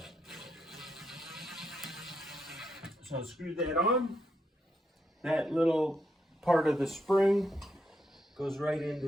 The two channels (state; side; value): normal; both; correlation 0.80